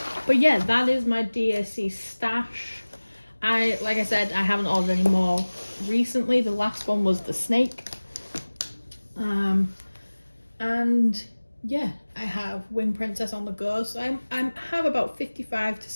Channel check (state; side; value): inverted; both; correlation -1.00